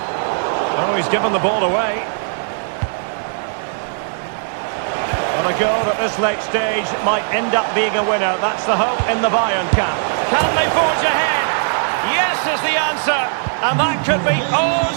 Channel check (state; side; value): silent; left; digital silence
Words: Oh, he's given the ball away. A goal at this late stage might end up being a winner. That's the hope in the Bayern camp. Can they forge ahead? Yes is the answer. And that could be oh